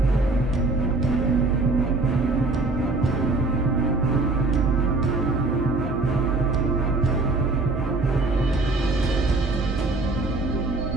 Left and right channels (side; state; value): left; quieter; 3.3 dB